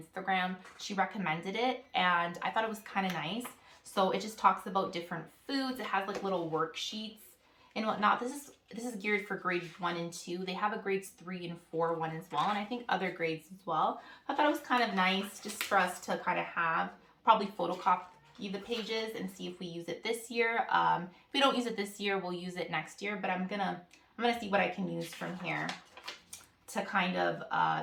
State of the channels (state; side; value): identical; both; correlation 1.00